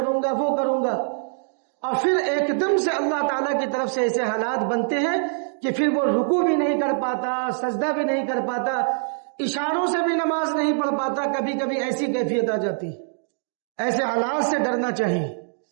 گا، وہ کروں گا، اور پھر ایک دم سے اللہ تعالیٰ کی طرف سے ایسے حالات بنتے ہیں کہ پھر وہ رکوع بھی نہیں کر پاتا، سجدہ بھی نہیں کر پاتا، اشاروں سے بھی نماز نہیں پڑھ پاتا، کبھی کبھی ایسی کیفیت آ جاتی۔ ایسے حالات سے ڈرنا چاہیے،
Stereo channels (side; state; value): left; silent; digital silence